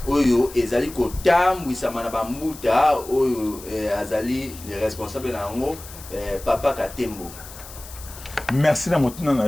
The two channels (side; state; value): left; noise; hiss, 16 dB below the sound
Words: oyo ezali ko tambwisa mana ba mbuta oyo azali le responsable na ngo papa Katembo. Merci na motuna na